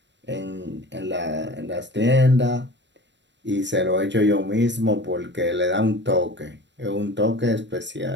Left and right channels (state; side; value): late; left; 0.52 ms